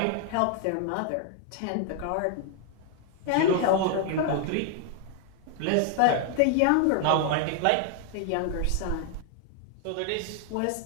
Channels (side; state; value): both; different; correlation 0.00